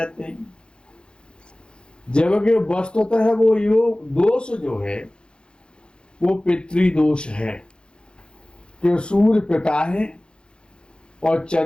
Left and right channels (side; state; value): right; late; 0.052 ms